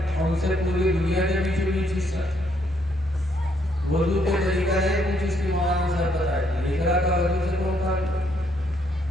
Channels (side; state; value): both; normal; correlation 0.72